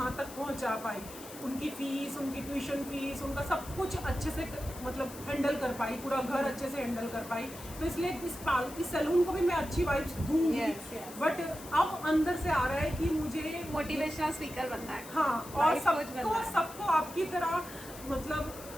तक पहुँचा पाई। उनकी फ़ीस, उनकी ट्यूशन फ़ीस, उनका सब कुछ अच्छे से मतलब हैंडल कर पाई, पूरा घर अच्छे से हैंडल कर पाई। तो इसलिए इस सैलून को भी मैं अच्छी वाइब्स दूंगी। Yes, yes. बट अब अंदर से आ रहा है कि मुझे मोटिवेशनल स्पीकर बनना है। हाँ, और Life coach बनना है। सबको आपकी तरह मतलब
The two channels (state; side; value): noise; left; hiss, 15 dB below the sound